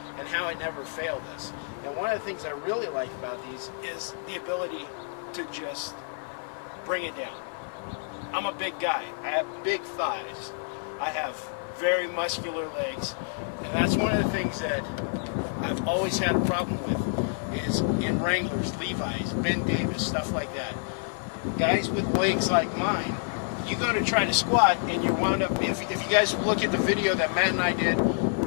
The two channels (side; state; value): right; silent; digital silence